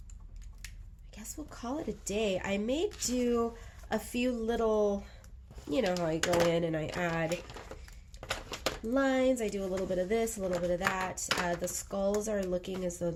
I guess we'll call it a day. I may do a few little, you know how I go in and I add lines. I do a little bit of this, a little bit of that. The skulls are looking as though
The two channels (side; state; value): both; identical; correlation 1.00